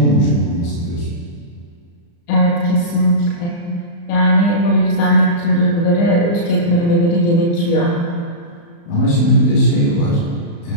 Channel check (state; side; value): late; right; 35 ms